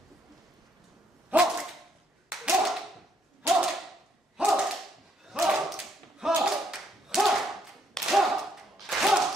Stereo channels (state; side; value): normal; both; correlation 0.71